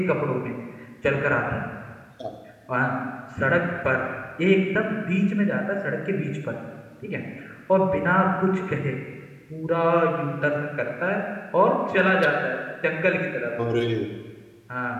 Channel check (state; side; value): identical; both; correlation 1.00